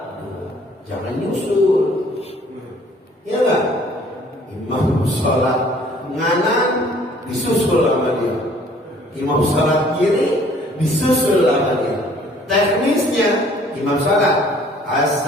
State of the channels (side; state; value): both; normal; correlation 0.56